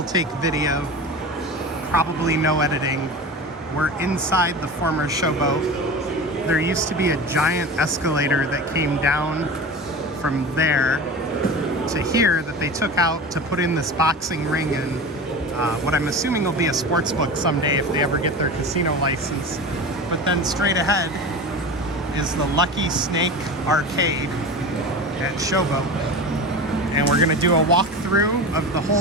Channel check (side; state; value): both; normal; correlation 0.31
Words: take video, probably no editing. We're inside the former Showboat. There used to be a giant escalator that came down from there to here that they took out to put in this boxing ring and what I'm assuming will be a sports book someday if they ever get their casino license. But then straight ahead is the Lucky Snake Arcade at Showboat. And we're gonna do a walkthrough of the